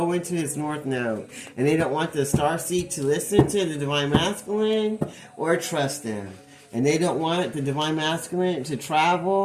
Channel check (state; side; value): identical; both; correlation 1.00